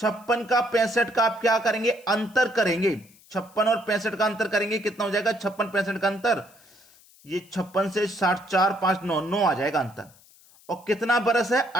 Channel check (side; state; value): left; noise; hiss, 27 dB below the sound